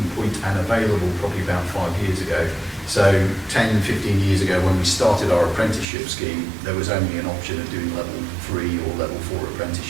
point and available probably about 5 years ago. So 10, 15 years ago, when we started our apprenticeship scheme, there was only an option of doing level 3 or level 4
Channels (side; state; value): left; drops out; at 5.9 s